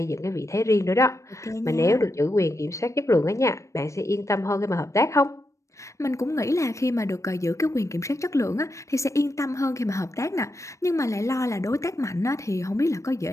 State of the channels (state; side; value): late; right; 0.15 ms